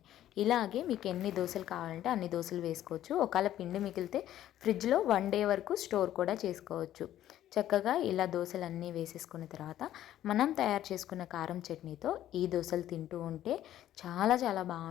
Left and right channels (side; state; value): right; quieter; 12.4 dB